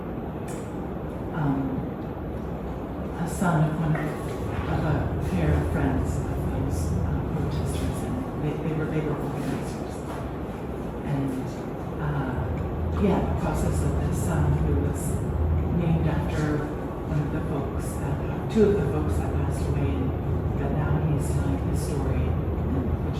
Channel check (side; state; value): both; identical; correlation 1.00